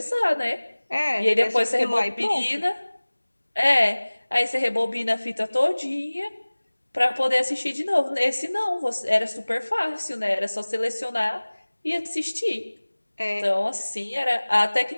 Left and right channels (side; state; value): both; inverted; correlation -1.00